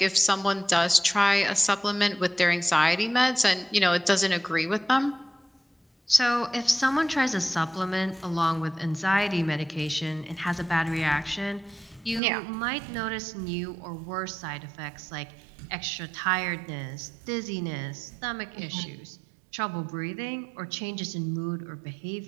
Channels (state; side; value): drops out; left; at 12.2 s